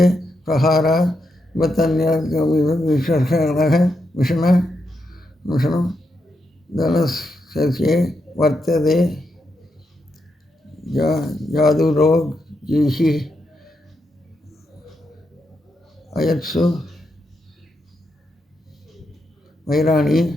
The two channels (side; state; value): both; normal; correlation 0.83